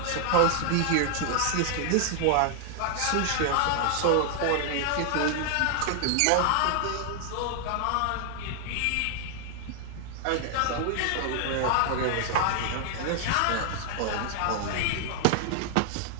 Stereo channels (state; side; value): different; both; correlation 0.00